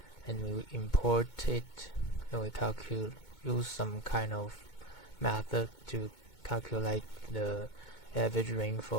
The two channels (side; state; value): right; late; 2.2 ms